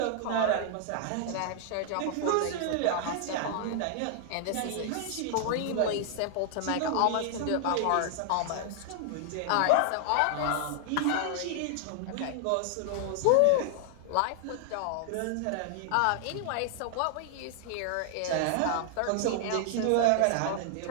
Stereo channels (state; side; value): different; both; correlation 0.00